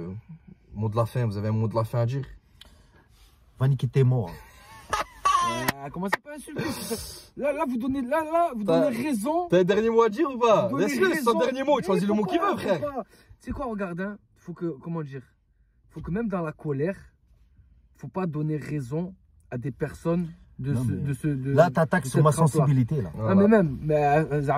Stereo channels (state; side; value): identical; both; correlation 1.00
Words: Mot de la fin, vous avez un mot de la fin à dire? Va niquer tes morts. Commencez pas à insulter. Là, vous donnez raison. T'as un dernier mot à dire ou pas? Vous donnez Laisse-le, c'est son raison. dernier mot. Il choisit le mot qu'il veut, frère. C'est quoi, regarde, hein, comment dire? Faut que même dans la colère, faut pas donner raison à des personnes là, t'attaques sur ma sensibilité, là. Ah, mais même,